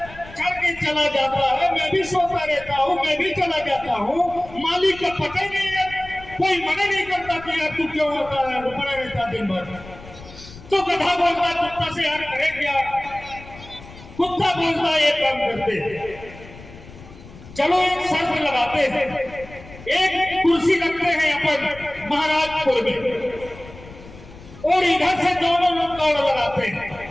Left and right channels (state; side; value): noise; left; rumble, 18 dB below the sound